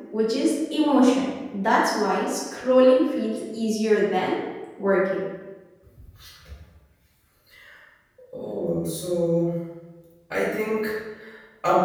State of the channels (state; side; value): identical; both; correlation 1.00